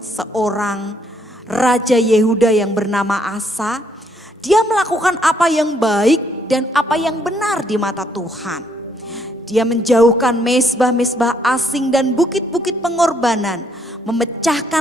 seorang raja Yehuda yang bernama Asa. Dia melakukan apa yang baik dan apa yang benar di mata Tuhan. Dia menjauhkan mezbah-mezbah asing dan bukit-bukit pengorbanan,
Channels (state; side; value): normal; both; correlation 0.70